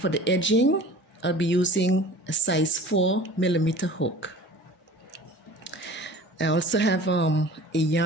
the edging, I'll be using a size 4mm hook. I also have a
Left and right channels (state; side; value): normal; both; correlation 0.42